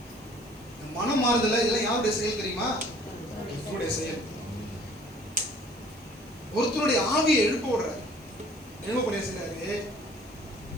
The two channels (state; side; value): noise; right; hiss, 27 dB below the sound